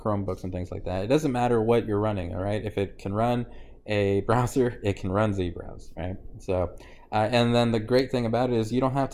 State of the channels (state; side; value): identical; both; correlation 1.00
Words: and things like that. It doesn't matter what you're running, all right? If it can run a browser, it can run zBrowse, right? So, and then the great thing about it is you don't have